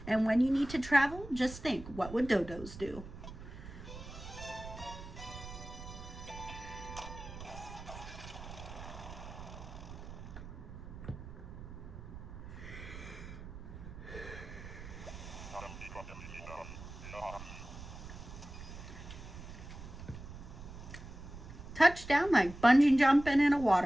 And when you need to travel, just think, what would dodos do? Touchdown like bungee jumping in a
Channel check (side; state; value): right; noise; rumble, 12 dB below the sound